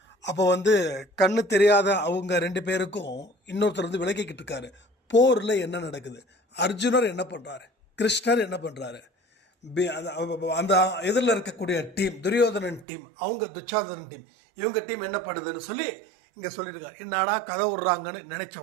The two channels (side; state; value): left; drops out; at 12.9 s